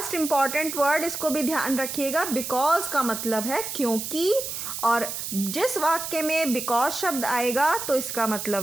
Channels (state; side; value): noise; right; hiss, 5 dB below the sound